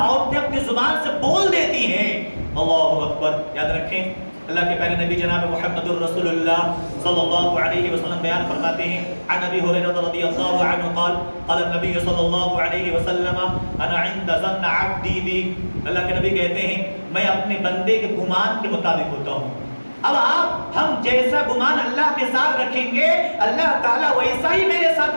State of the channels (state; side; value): inverted; both; correlation -1.00